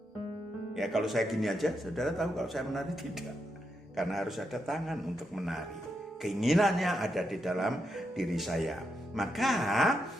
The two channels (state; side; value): normal; both; correlation 0.83